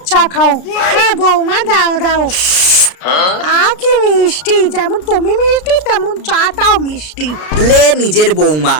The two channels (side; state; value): right; late; 33 ms